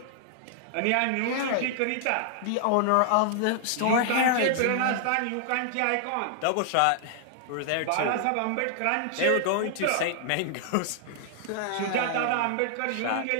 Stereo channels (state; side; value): different; both; correlation -0.01